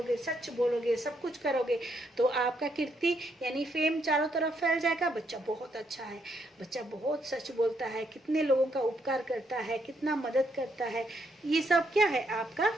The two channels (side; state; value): both; normal; correlation 0.75